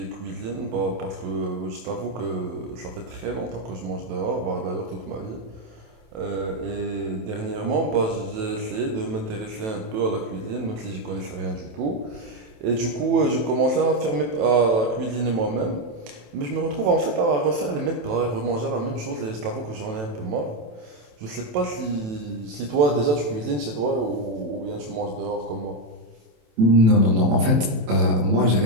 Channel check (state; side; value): late; left; 27 ms